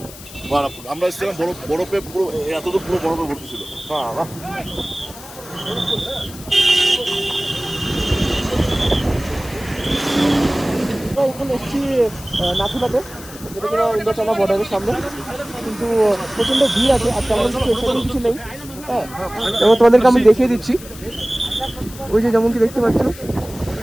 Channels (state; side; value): noise; left; hiss, 17 dB below the sound